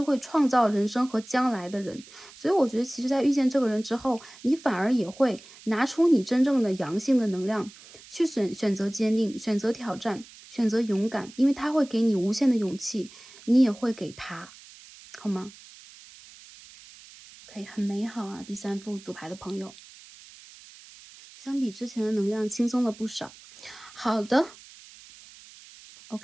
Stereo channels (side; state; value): right; noise; hiss, 20 dB below the sound